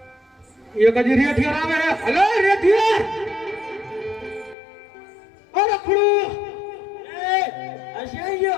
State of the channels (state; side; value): drops out; right; at 4.5 s